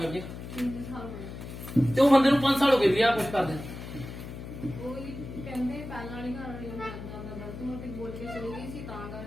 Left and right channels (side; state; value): left; noise; hum, 10 dB below the sound